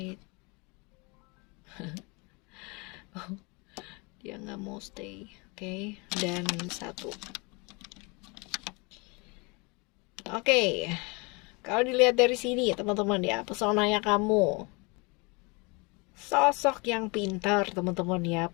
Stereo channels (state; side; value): quieter; right; 29.1 dB